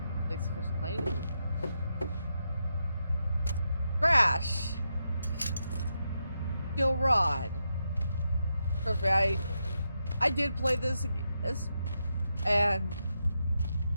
Crash! Steel rod. Trust me, I did play this and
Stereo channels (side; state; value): both; inverted; correlation -0.85